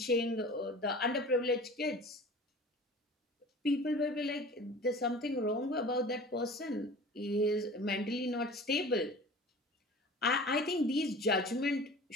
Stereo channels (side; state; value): both; normal; correlation 0.41